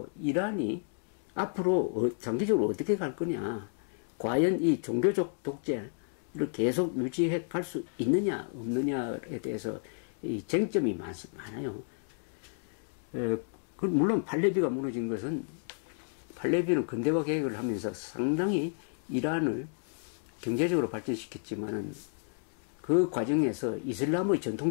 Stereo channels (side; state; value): right; silent; digital silence